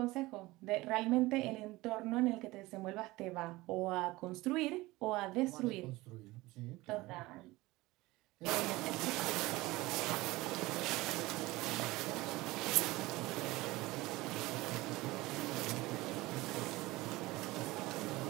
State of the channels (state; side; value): quieter; left; 20.0 dB